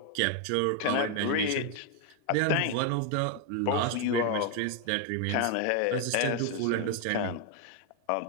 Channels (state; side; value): different; both; correlation 0.01